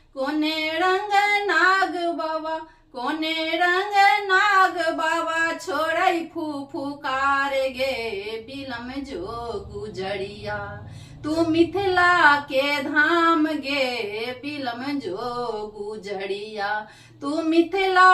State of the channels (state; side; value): identical; both; correlation 1.00